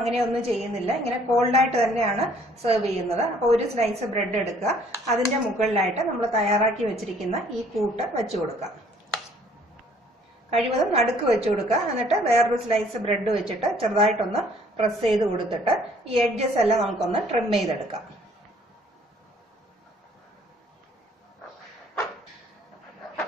ചെയ്യുന്നില്ല. ഇങ്ങനെ കോൾഡായിട്ട് തന്നെയാണ് സെർവ് ചെയ്യുന്നത്. അപ്പോൾ ഒരു സ്ലൈസ് ബ്രെഡ് എടുക്കുക. അതിന്റെ മുകളിലായിട്ട് നമ്മൾ തയ്യാറാക്കി വെച്ചിരിക്കുന്ന ഈ കൂട്ട് വെച്ചു കൊടുക്കുക. കഴിവതും നടുക്ക് വെച്ചു കൊടുക്കുക. എന്നിട്ട് വേറൊരു സ്ലൈസ് ബ്രെഡ് വെച്ചിട്ട് ചെറുതായിട്ടൊന്ന് പ്രസ് ചെയ്ത് കൊടുത്തിട്ട് ഈ എഡ്ജസ് എല്ലാം നമുക്കൊന്ന് ട്രിം ചെയ്തെടുക്കാം.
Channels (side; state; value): both; normal; correlation 0.59